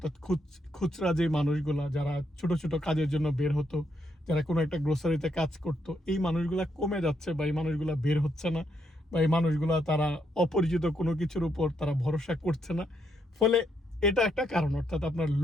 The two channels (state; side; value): normal; both; correlation 0.77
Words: খুচরা যে মানুষগুলা যারা ছোট ছোট কাজের জন্য বের হতো, যারা কোনো একটা গ্রোসারিতে কাজ করতো, এই মানুষগুলা কমে যাচ্ছে, বা এই মানুষগুলা বের হচ্ছে না, বা এই মানুষগুলা তারা অপরিচিত কোনো কিছুর উপর তারা ভরসা করছে না। ফলে এটা একটা কারণ, অর্থাৎ আপনার